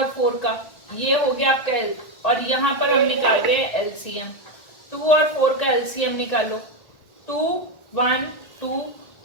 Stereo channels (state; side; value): late; right; 1.5 ms